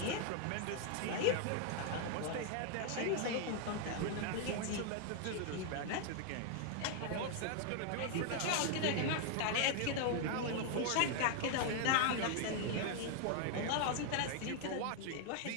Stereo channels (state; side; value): different; both; correlation 0.00